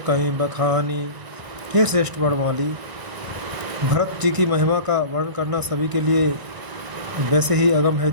बखानी। हे श्रेष्ठ वर्णमाली, भरत जी की महिमा का वर्णन करना सभी के लिए वैसे ही अगम है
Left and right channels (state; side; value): late; left; 1.0 ms